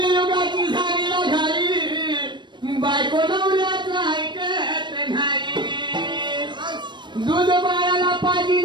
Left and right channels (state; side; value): late; left; 0.22 ms